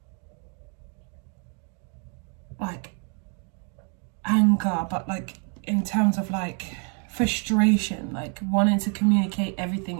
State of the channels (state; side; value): quieter; left; 39.4 dB